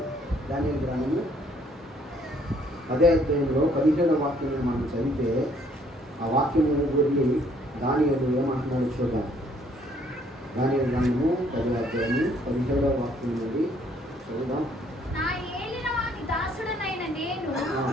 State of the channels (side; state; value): both; normal; correlation 0.64